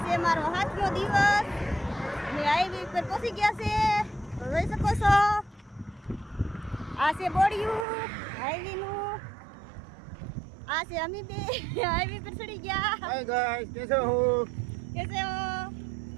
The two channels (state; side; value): drops out; left; at 7.9 s